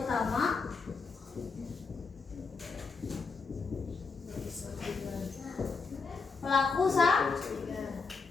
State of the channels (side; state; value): right; quieter; 4.7 dB